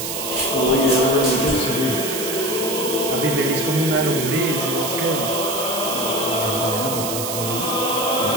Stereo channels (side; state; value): right; noise; hiss, 4 dB below the sound